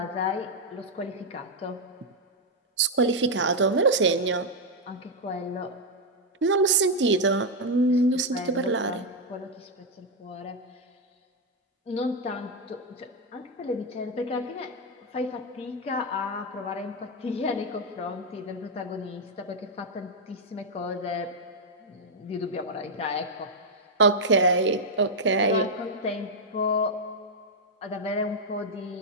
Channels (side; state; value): both; normal; correlation -0.01